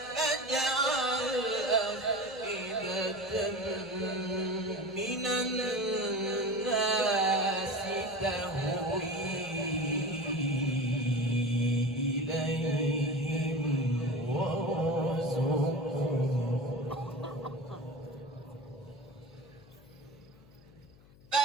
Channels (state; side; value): noise; left; hum, 25 dB below the sound